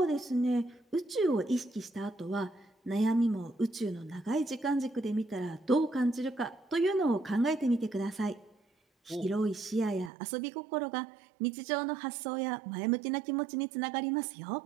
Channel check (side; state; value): left; drops out; at 10.1 s